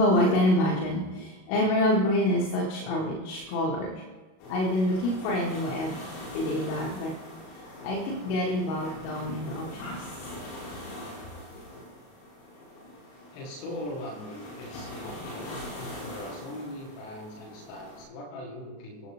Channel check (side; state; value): right; late; 38 ms